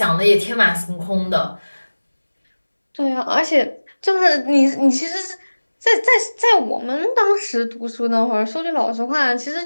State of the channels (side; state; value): both; inverted; correlation -1.00